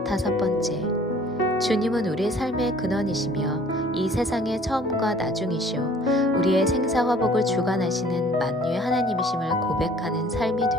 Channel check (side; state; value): both; normal; correlation 0.53